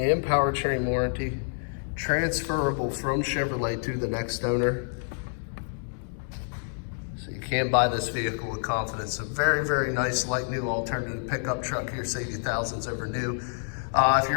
powertrain warranty, transferable from Chevrolet to the next owner. So you can buy this vehicle with confidence. A very, very nice like new alternative pickup truck here, save you thousands over new. If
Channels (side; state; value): right; silent; 59 dB below the other